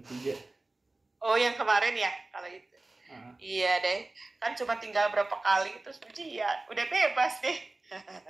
Oh, yang kemarin ya kalau itu. Iya deh, kan cuma tinggal berapa kali terus ujian, udah bebas deh.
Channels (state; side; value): quieter; left; 3.0 dB